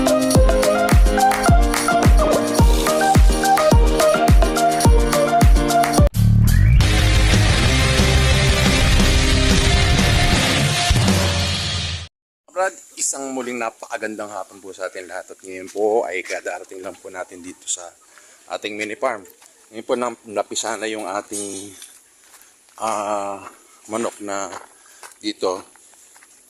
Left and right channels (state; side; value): identical; both; correlation 1.00